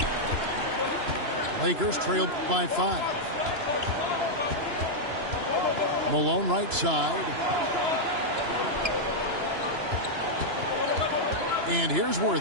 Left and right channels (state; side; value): late; left; 2.9 ms